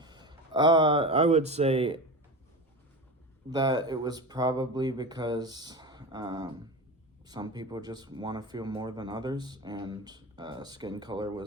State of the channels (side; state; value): both; normal; correlation 0.26